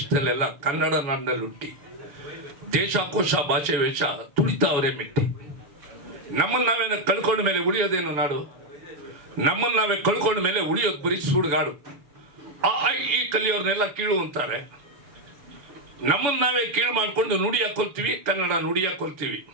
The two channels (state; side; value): late; left; 7.0 ms